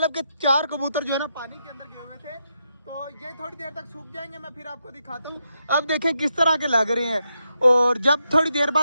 कि 4 कबूतर जो है ना पानी के अंदर गए हुए थे। तो ये थोड़ी देर तक सूख जाएंगे, मैं फिर आपको दिखाता हूँ। अब देखें किस तरह के लग रहे हैं, और जब थोड़ी देर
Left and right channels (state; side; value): inverted; both; correlation -0.83